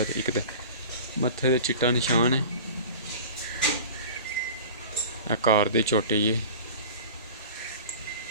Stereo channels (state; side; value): inverted; both; correlation -0.37